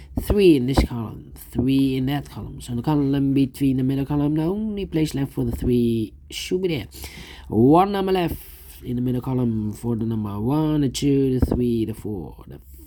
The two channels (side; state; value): both; identical; correlation 1.00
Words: 3 in this column, 3 in that column. So the column between the middle column, the only place left for the 3 should be there. 1 number left in the middle column for the number 1, the 2, the 3, the 4, the